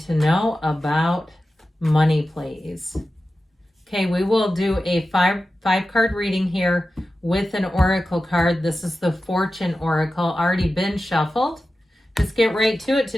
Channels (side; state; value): both; normal; correlation 0.93